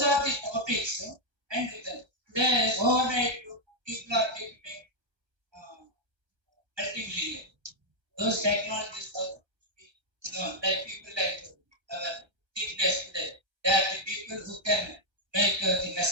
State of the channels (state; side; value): late; left; 1.3 ms